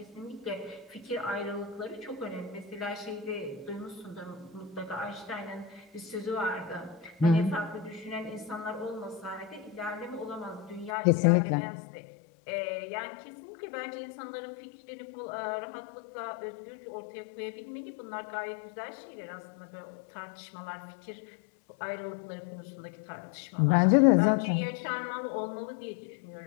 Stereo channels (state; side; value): drops out; right; at 10.9 s